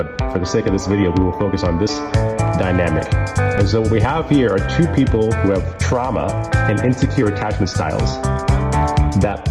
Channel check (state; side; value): identical; both; correlation 1.00